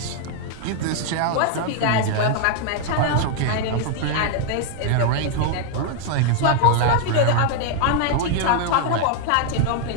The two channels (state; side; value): different; both; correlation 0.00